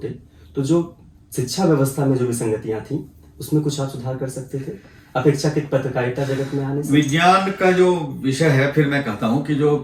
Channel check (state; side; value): identical; both; correlation 1.00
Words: तो जो शिक्षा व्यवस्था में जो विसंगतियां थी उसमें कुछ आप सुधार कर सकते थे अपेक्षाकृत पत्रकारिता जगत में आने से। विज्ञान का जो विषय है, फिर मैं कहता हूँ कि